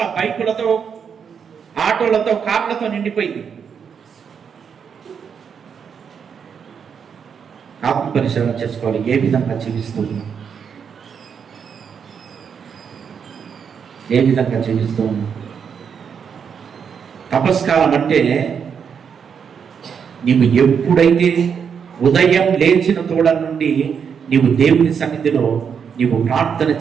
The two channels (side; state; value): left; quieter; 7.0 dB